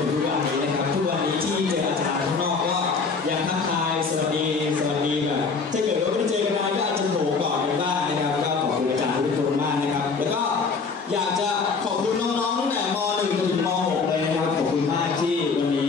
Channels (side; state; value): right; quieter; 4.8 dB